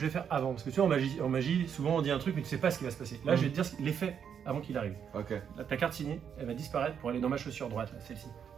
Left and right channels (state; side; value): quieter; left; 7.8 dB